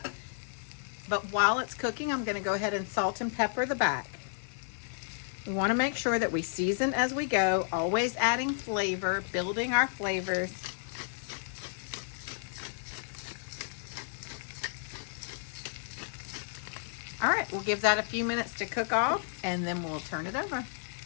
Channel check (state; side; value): silent; right; digital silence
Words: But while it's cooking, I'm going to go ahead and salt and pepper the back. We want to make sure that we season as we go, always adding flavor, building our flavors. All right, we'll give that a few minutes to cook off and then we'll turn it over.